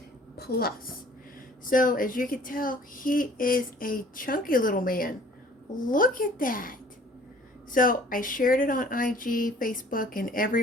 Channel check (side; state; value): both; normal; correlation 0.53